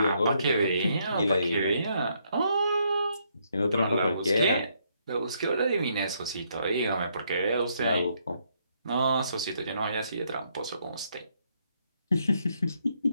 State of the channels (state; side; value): inverted; both; correlation -0.73